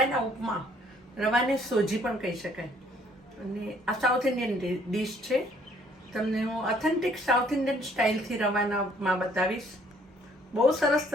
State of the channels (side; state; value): both; normal; correlation 0.62